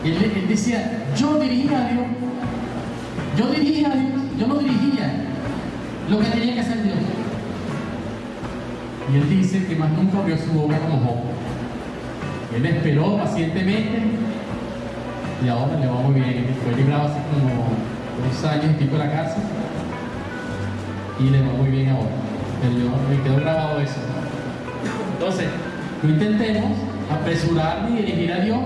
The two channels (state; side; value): identical; both; correlation 1.00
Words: Él decía, yo dirigía a Dios. Yo no dirigía lo que tenía que hacer Dios. Y él dice que más nunca abrió su boca como Job. Él esperó pacientemente y ahora le va muy bien. Fue librado hace como 2 años y pico de la cárcel y le va muy bien ahora. Me quedó grabado eso. Entonces, no intentemos apresurar ni dirigir a Dios